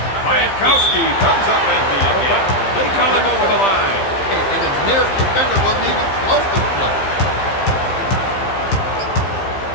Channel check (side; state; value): right; late; 15 ms